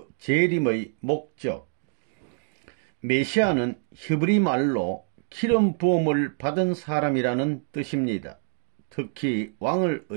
재림의 목적. 메시아는 히브리 말로 기름 부음을 받은 사람이라는 뜻입니다. 특히 왕을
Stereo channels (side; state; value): left; silent; digital silence